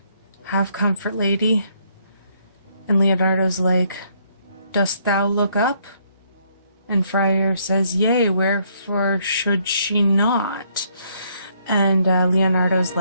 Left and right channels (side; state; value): both; inverted; correlation -0.69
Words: have comfort, lady. And Leonardo's like, dost thou look up? And friar says, yea, wherefore should she not? And Leonardo's